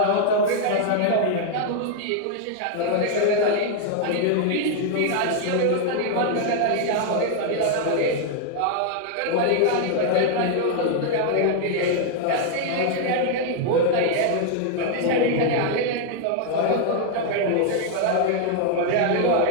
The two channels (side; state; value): both; different; correlation 0.00